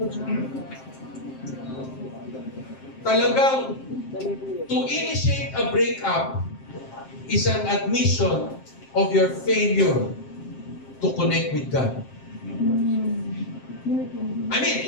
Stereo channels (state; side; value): late; right; 7.6 ms